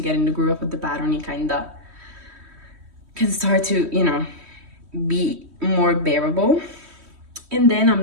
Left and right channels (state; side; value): late; left; 3.1 ms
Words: get in the groove of the pattern, you kind of can start to, you know, be more bearable. And then